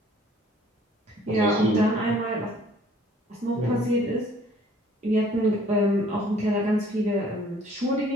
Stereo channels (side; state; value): both; normal; correlation 0.56